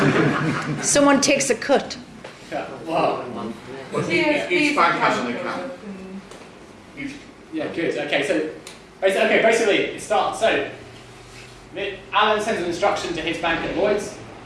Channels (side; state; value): both; identical; correlation 1.00